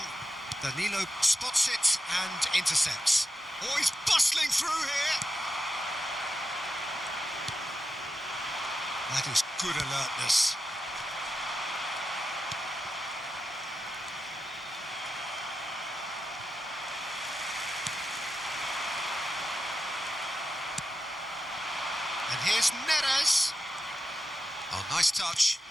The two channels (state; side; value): normal; both; correlation 0.90